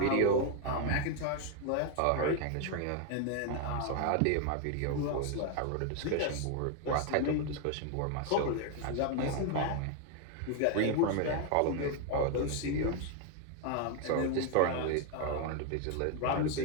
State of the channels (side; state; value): both; different; correlation 0.01